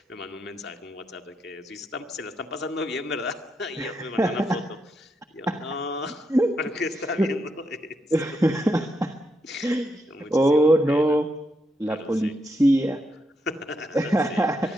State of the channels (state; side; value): normal; both; correlation 0.81